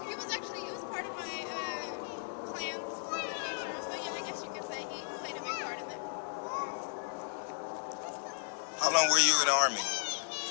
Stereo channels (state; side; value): silent; right; 54 dB below the other